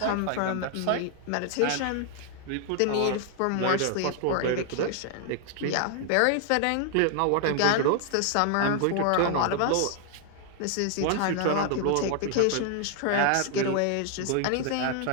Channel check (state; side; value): different; both; correlation 0.00